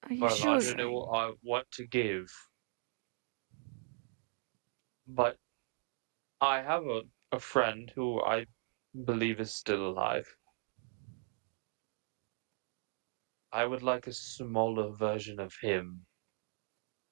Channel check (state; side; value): silent; left; 52 dB below the other